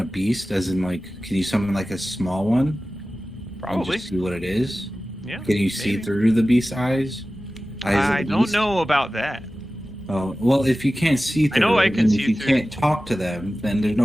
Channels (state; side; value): normal; both; correlation 0.96